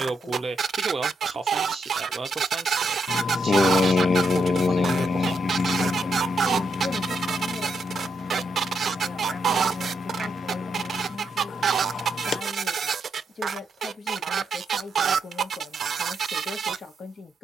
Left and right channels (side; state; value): both; normal; correlation 0.79